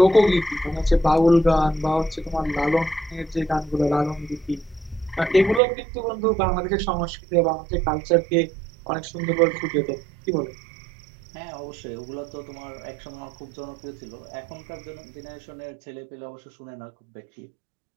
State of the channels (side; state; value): left; drops out; at 5.6 s